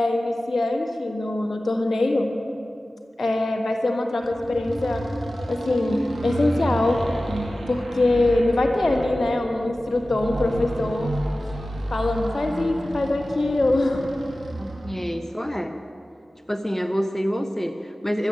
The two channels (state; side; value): normal; both; correlation 0.96